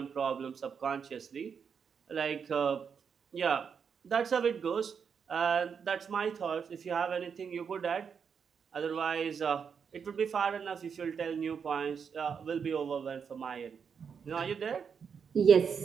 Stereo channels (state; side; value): quieter; left; 6.6 dB